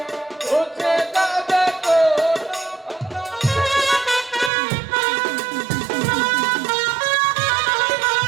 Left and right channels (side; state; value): left; drops out; at 4.5 s